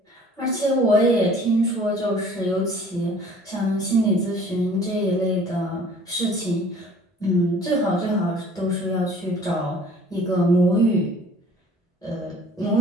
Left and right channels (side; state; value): both; normal; correlation 0.51